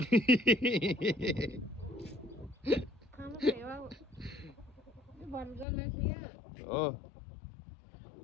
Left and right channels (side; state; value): right; drops out; at 5.7 s